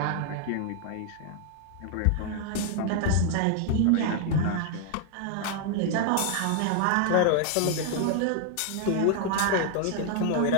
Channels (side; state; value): both; different; correlation 0.00